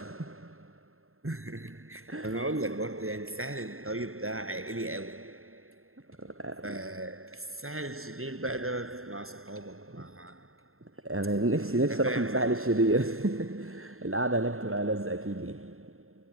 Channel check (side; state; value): left; late; 0.62 ms